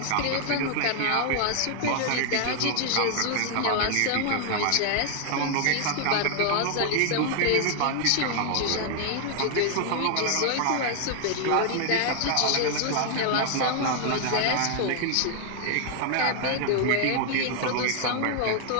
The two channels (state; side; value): different; both; correlation 0.00